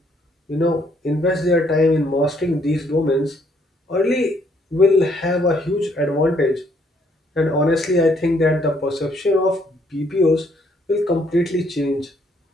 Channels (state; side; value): normal; both; correlation 0.68